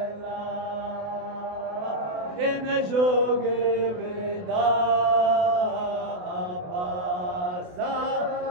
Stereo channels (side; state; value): left; late; 28 ms